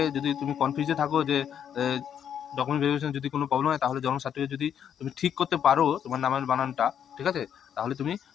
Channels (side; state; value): right; quieter; 8.9 dB